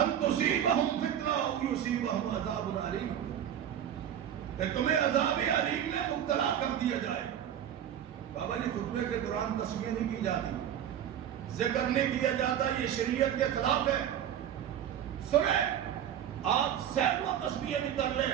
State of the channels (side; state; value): left; quieter; 10.0 dB